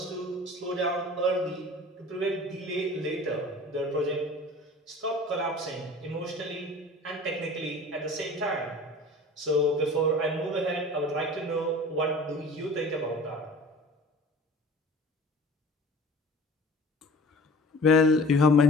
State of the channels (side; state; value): both; normal; correlation 0.43